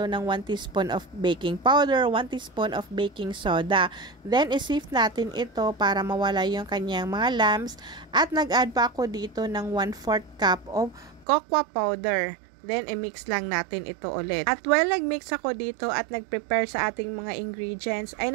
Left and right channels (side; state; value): left; drops out; at 11.2 s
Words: ng 1 teaspoon of baking powder, 1 teaspoon of baking soda. Then, isift natin ito para mawala yung kanyang mga lumps at nag-add pa ako dito ng 1/4 cup of cocoa powder. Then, i-mix lang natin ito ulit. At while nag-mix ako dito at nag-prepare sa ating mga ingredients, ay